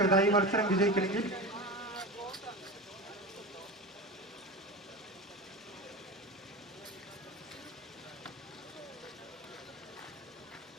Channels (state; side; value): normal; both; correlation 0.27